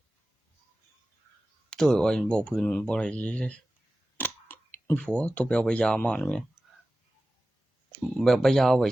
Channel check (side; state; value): both; normal; correlation 0.95